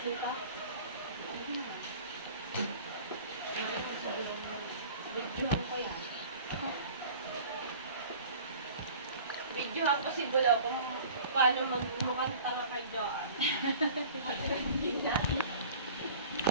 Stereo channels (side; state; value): both; inverted; correlation -0.45